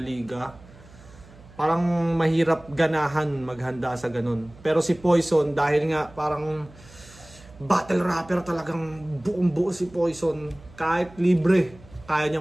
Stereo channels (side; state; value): right; noise; hum, 22 dB below the sound